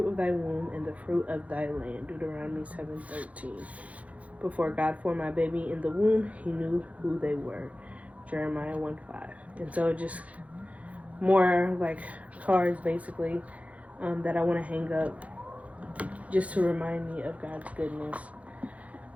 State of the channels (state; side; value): late; left; 0.067 ms